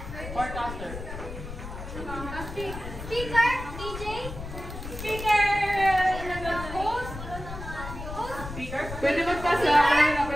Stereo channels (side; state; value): left; noise; rumble, 9 dB below the sound